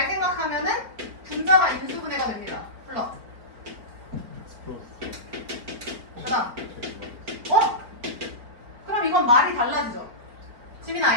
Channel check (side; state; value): left; late; 4.4 ms